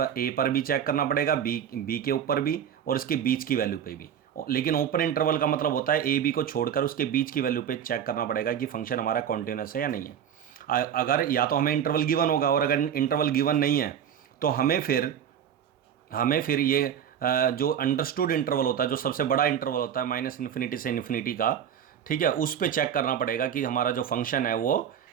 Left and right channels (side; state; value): left; quieter; 9.0 dB